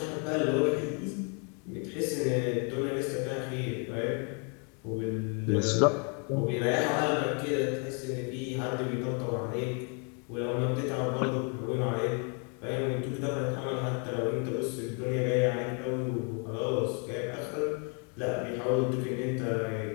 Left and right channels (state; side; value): quieter; right; 38.2 dB